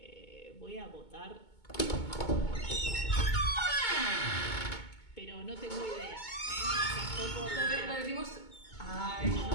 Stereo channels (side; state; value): right; late; 2.2 ms